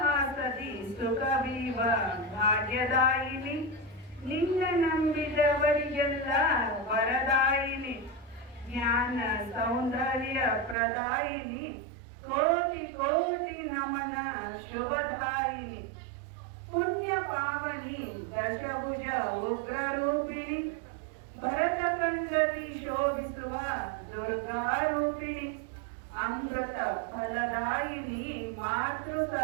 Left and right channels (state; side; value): drops out; left; at 10.8 s